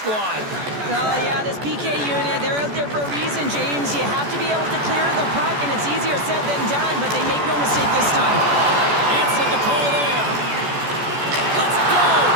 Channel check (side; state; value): left; late; 14 ms